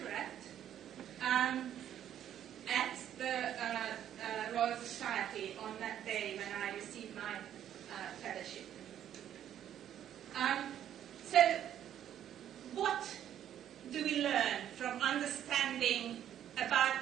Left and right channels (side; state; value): left; quieter; 10.6 dB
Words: at the Royal Society on that day when I received my fellowship. So what do we learn from understanding